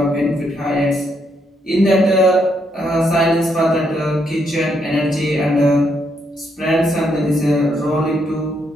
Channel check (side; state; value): both; normal; correlation 0.76